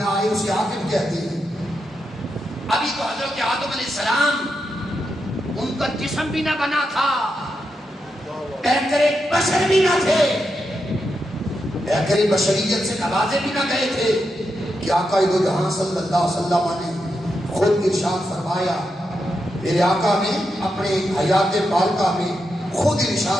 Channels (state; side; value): normal; both; correlation 0.85